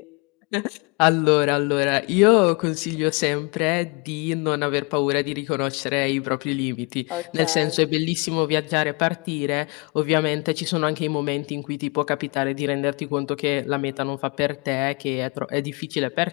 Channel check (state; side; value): quieter; right; 30.1 dB